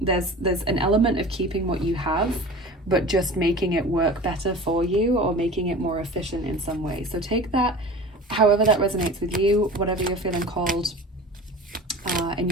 an element of keeping what you have, but just making it work better for you or making it more efficient in some way. So take that, however that resonates with you, whatever you're feeling called in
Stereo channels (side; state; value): both; normal; correlation 0.38